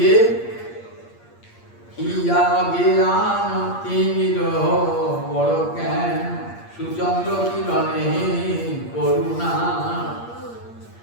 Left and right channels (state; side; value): late; right; 8.6 ms